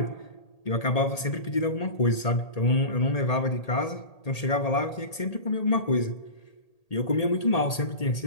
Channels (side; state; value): right; late; 1.8 ms